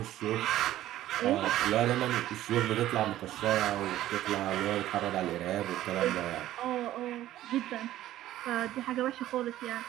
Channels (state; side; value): quieter; left; 13.9 dB